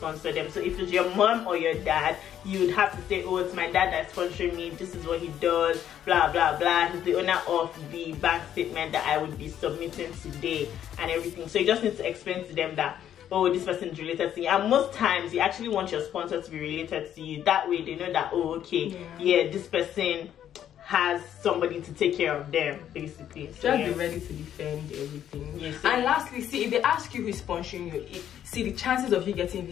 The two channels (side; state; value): right; quieter; 10.4 dB